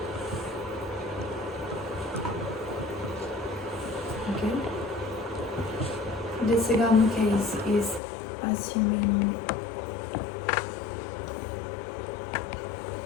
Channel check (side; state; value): right; drops out; at 8.0 s